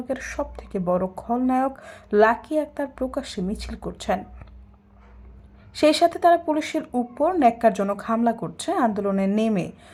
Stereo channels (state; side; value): identical; both; correlation 1.00